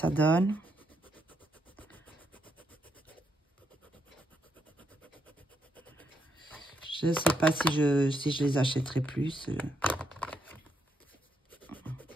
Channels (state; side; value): normal; both; correlation 0.78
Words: donne. Je ne sais pas si je les achèterai plus.